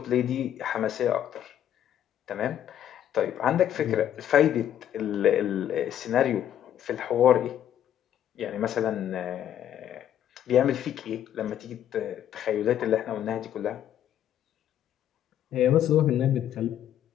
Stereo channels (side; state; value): right; quieter; 10.6 dB